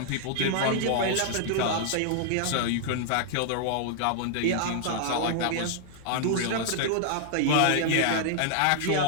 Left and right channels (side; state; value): both; different; correlation -0.01